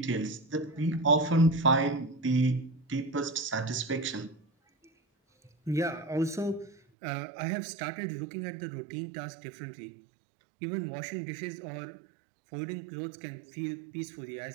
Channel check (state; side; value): drops out; left; at 6.8 s